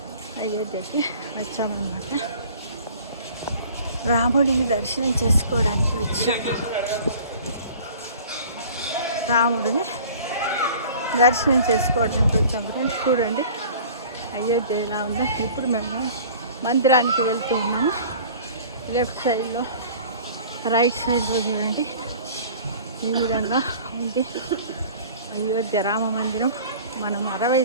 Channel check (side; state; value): both; inverted; correlation -0.46